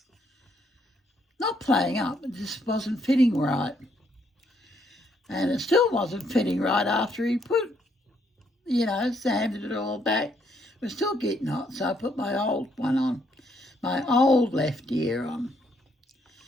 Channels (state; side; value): normal; both; correlation 0.72